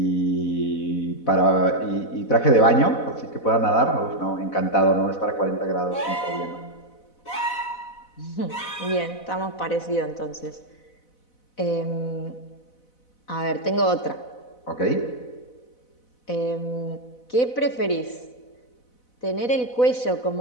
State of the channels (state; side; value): late; right; 4.0 ms